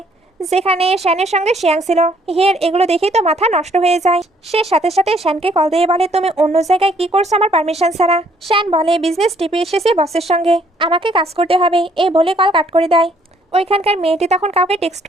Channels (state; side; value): normal; both; correlation 0.65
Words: যেখানে শ্যানের সঙ্গে শিয়াং ছিল। হিয়ের এগুলো দেখেই তো মাথা নষ্ট হয়ে যায়। সে সাথে সাথে শ্যানকে কল দিয়ে বলে, তুমি অন্য জায়গায় কি করছো আমার পারমিশন ছাড়া? শ্যান বলে, বিজনেস টিপে এসেছে বসের সঙ্গে, আমাকে কাজ করতে হবে, এই বলে কল কাট করে দেয়। ওইখানকার মেয়েটি তখন কাউকে টেক্সট